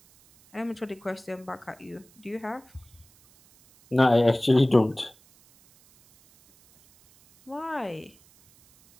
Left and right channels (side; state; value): right; noise; hiss, 29 dB below the sound